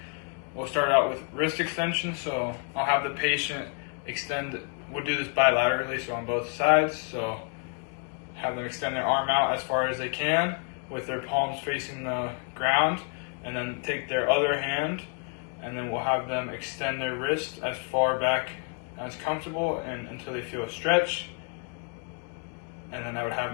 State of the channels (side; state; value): right; quieter; 38.8 dB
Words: We'll start out with wrist extension. So I'll have the patient extend, we'll do this bilaterally, so on both sides. So have them extend their arm out as far as they can with their palms facing the ground, and then take their other hand, and then we'll have them extend their wrist as far back as comfortable and until they feel a stretch. And then I would have